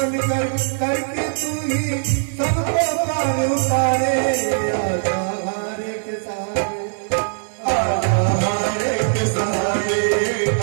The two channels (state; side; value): silent; left; digital silence